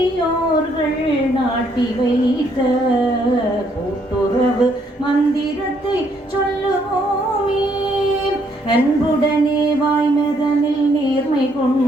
நாட்டி வைத்த கூட்டுறவு மந்திரத்தை சொல்லுவோமே. அன்புடனே வாய்மதனில் நேர்மை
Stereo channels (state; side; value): normal; both; correlation 0.70